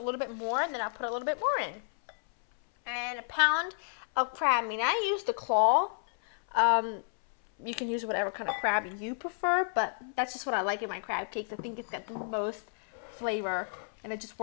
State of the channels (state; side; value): silent; right; 57 dB below the other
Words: bit more, then I'll put a little bit more in. And 1 pound of crab meat. I use the claw. You can use whatever kind of crab you prefer, but that's just what I like in my crab cakes. I think it's got the most flavor, and it just